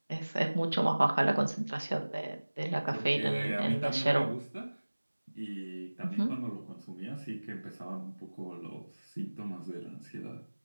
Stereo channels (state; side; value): inverted; both; correlation -1.00